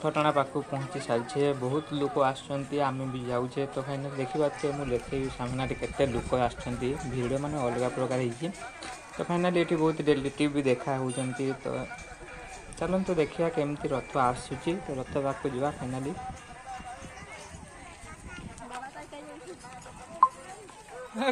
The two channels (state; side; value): identical; both; correlation 1.00